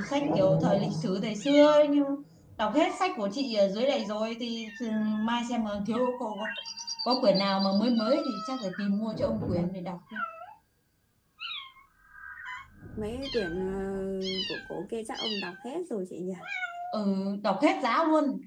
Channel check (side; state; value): both; identical; correlation 1.00